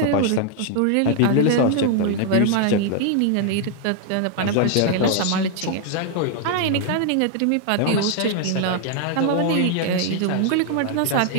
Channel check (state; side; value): different; both; correlation 0.00